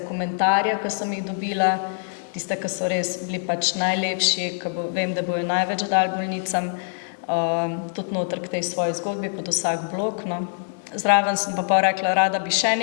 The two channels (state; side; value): silent; right; digital silence